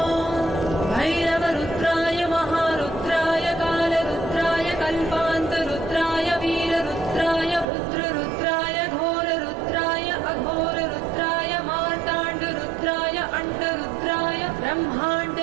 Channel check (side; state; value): left; drops out; at 7.7 s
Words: भैरवरुद्राय महारुद्राय कालरुद्राय कल्पान्तरुद्राय वीररुद्राय रुद्ररुद्राय घोररुद्राय अघोररुद्राय मार्ताण्डरुद्राय अण्डरुद्राय